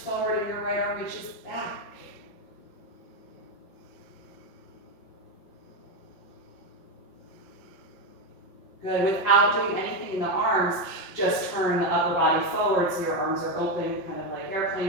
and your right arm reaches back. Good. Without doing anything in the arms, just turn the upper body forward so your arms are open, kind of like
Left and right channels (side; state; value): right; late; 5.7 ms